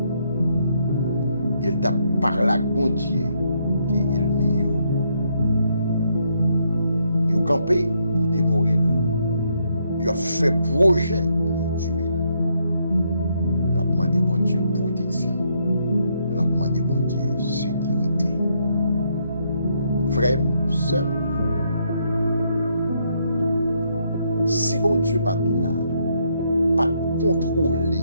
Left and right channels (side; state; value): both; inverted; correlation -0.74